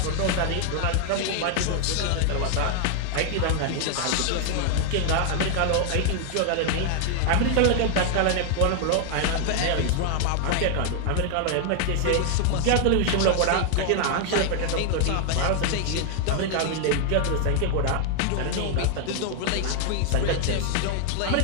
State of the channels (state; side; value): different; both; correlation 0.00